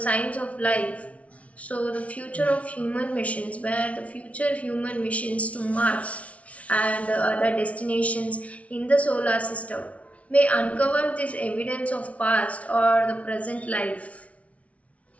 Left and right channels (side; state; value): right; late; 0.065 ms